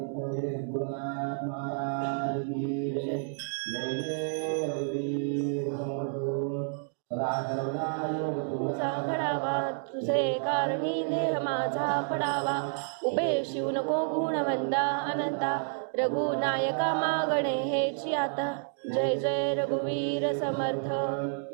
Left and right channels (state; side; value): silent; left; digital silence